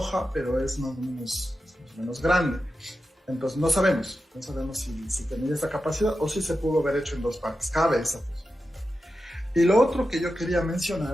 pero es más o menos grande. Entonces no sabemos si tenía esa capacidad o si se pudo haber hecho en dos partes. Cabe esa posibilidad. Y lo otro que yo quería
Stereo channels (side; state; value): both; normal; correlation 0.91